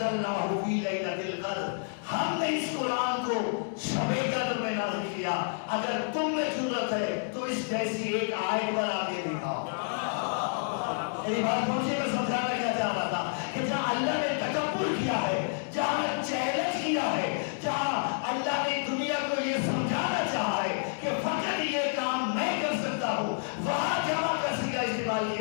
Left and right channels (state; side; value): silent; right; digital silence